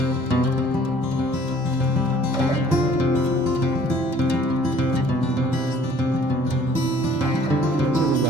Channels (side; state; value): both; normal; correlation 0.55